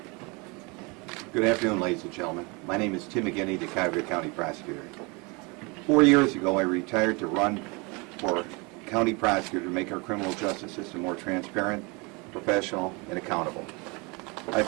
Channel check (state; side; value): quieter; left; 28.7 dB